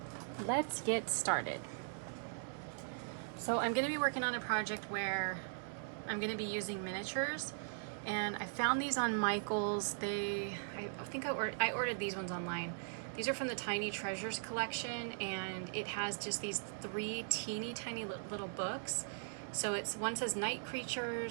let's get started. So I'm going to be working on a project where I'm going to be using miniatures, and I found these on Michael's. I think I ordered these ones online. These are from the Tiny Treasures collection, and it has just these 3 teeny tiny little books. So one says Night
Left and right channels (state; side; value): silent; left; digital silence